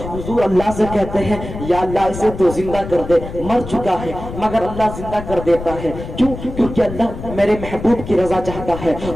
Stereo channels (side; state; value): left; noise; rumble, 10 dB below the sound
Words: حضور اللہ سے کہتے ہیں یا اللہ اسے تو زندہ کر دے, مر چکا ہے مگر اللہ زندہ کر دیتا ہے. کیوں؟ کیونکہ اللہ میرے محبوب کی رضا چاہتا ہے.